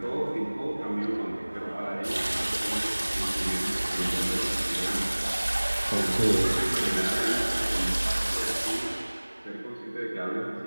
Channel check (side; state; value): both; inverted; correlation -1.00